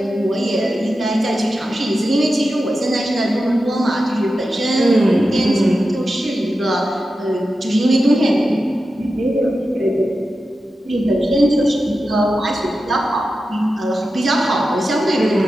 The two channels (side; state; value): both; normal; correlation 0.91